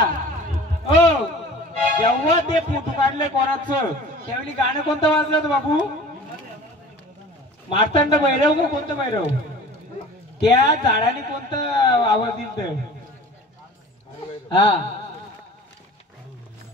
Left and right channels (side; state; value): both; normal; correlation 0.42